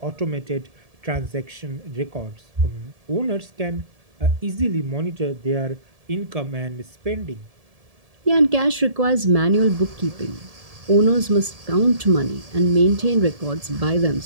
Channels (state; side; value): late; left; 1.7 ms